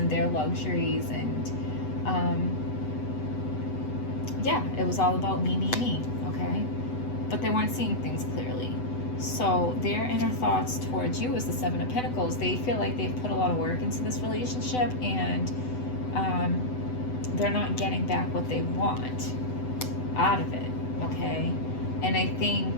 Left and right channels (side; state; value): right; late; 8.0 ms